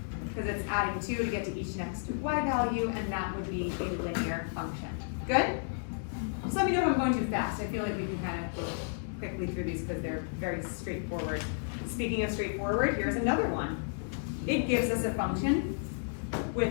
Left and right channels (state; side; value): silent; right; digital silence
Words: because it's adding 2 to get to each next y value, and that would be a linear function. Good? Just let me know if I'm going too fast. I feel like we can kind of go quickly through these because they're very straightforward. Speaking of straightforward, here's another one. It gives us a function